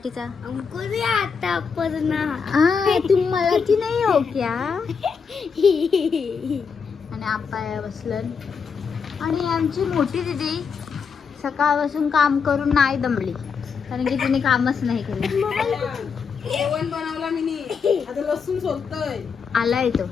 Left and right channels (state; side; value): quieter; right; 5.9 dB